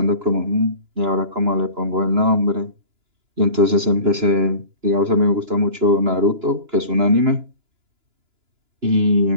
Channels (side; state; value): left; late; 2.9 ms